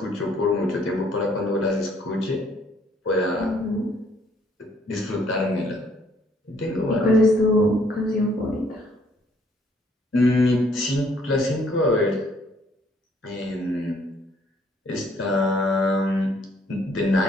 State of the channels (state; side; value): normal; both; correlation 0.65